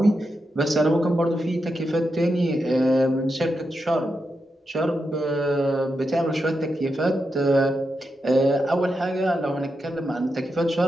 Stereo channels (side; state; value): both; normal; correlation 0.86